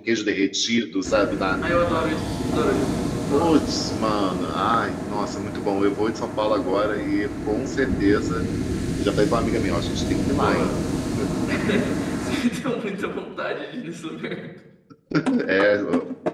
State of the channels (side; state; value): both; identical; correlation 1.00